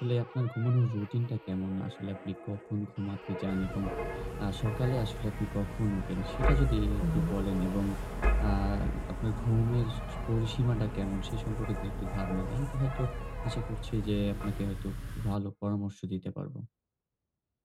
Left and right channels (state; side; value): identical; both; correlation 1.00